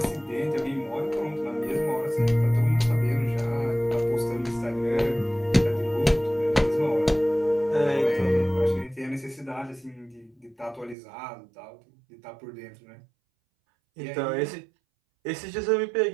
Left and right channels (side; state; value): left; drops out; at 11.0 s